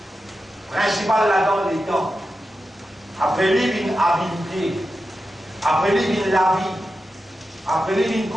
Principal là-dedans, les temps. Après lui, une habilité. Après lui vient la vie. Après lui vient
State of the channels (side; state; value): both; normal; correlation 0.91